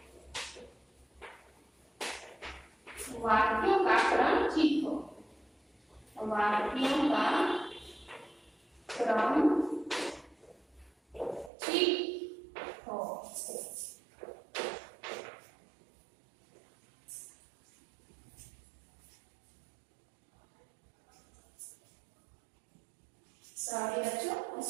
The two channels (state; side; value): drops out; left; at 11.5 s